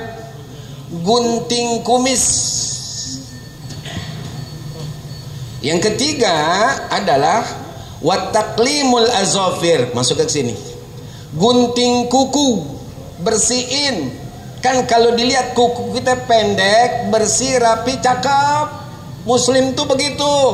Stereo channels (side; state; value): both; identical; correlation 1.00